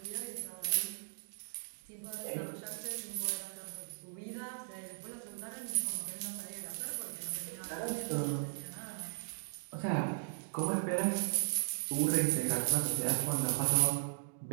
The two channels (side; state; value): left; silent; digital silence